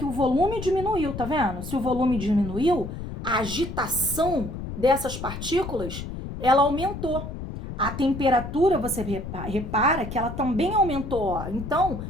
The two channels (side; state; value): left; noise; rumble, 8 dB below the sound